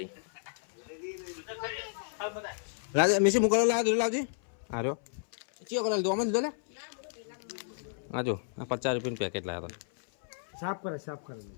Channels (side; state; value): right; silent; 56 dB below the other